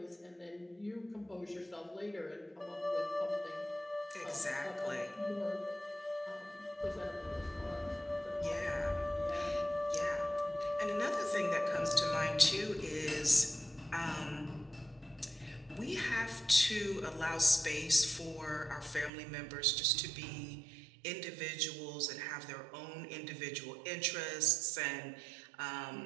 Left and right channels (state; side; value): drops out; left; at 19.1 s